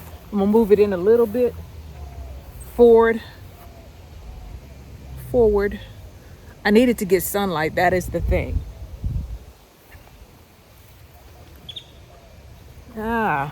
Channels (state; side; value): identical; both; correlation 1.00